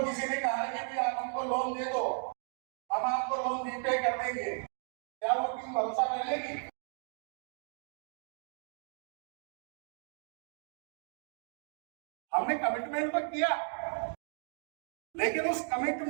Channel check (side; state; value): left; silent; 54 dB below the other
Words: किसी ने कहा है कि आप हमको लोन दे दो, हम आपको लोन रीपे कर देंगे, क्या वो टीम भरोसा कर लेगी? हमने कमिटमेंट तो किया, लेकिन उस